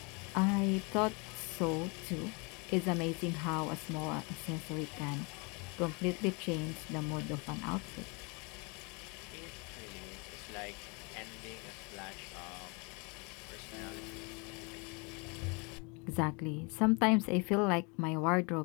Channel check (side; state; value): right; quieter; 31.1 dB